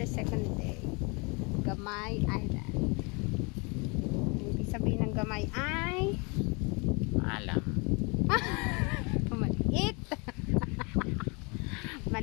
second day. Gamay Island. Ibig sabihin ng Gamay ay Alam. maliit.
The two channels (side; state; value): right; quieter; 30.7 dB